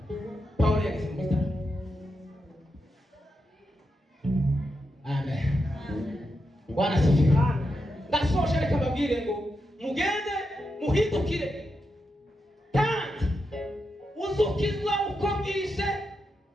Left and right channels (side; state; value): both; normal; correlation 0.86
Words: Pawulo yageze mu bitaramo. Amen. Bwana sifiwe. Ndasoje reka babwire ngo mugende muhindukire kandi uzukizwa uko bwije